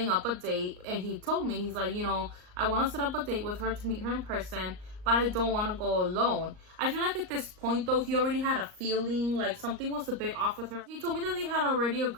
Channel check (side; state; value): left; late; 38 ms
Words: up a date, and he told me, he's like, you know, I want to set up a date with her to meet her in person, but I don't want to go alone. I feel like at this point, though, he already had a feeling like something was a bit off with her. He told me that they had already